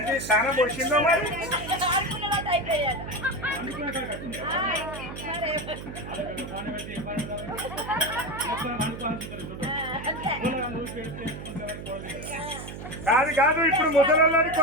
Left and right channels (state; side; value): noise; right; hum, 10 dB below the sound